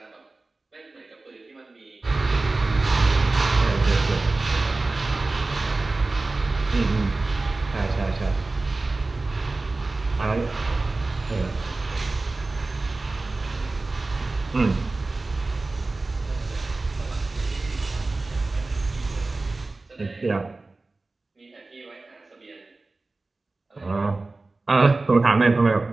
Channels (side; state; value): left; quieter; 3.3 dB